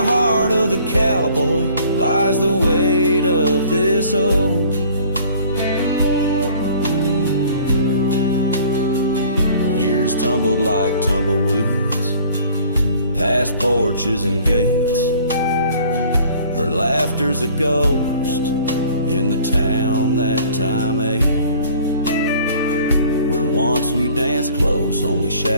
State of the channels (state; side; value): inverted; both; correlation -0.52